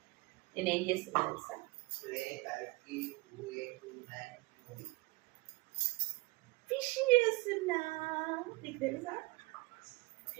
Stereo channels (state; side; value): quieter; left; 24.0 dB